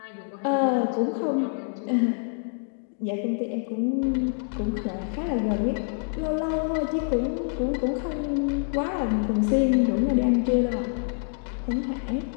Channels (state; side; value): silent; right; 61 dB below the other